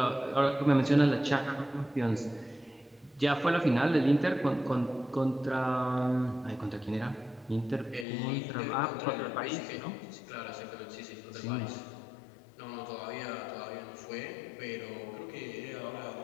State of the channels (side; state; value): right; drops out; at 8.1 s